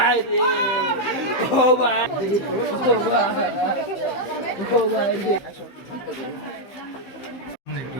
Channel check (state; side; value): late; right; 15 ms